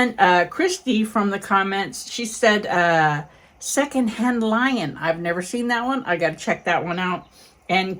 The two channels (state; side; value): identical; both; correlation 1.00